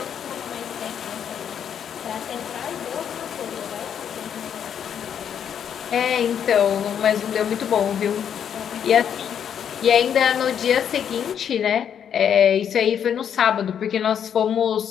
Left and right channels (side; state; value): right; quieter; 8.5 dB